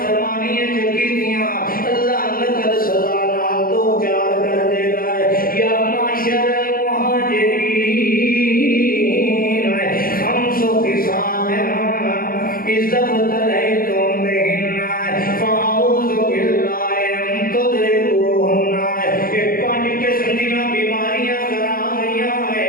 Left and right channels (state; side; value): late; right; 0.42 ms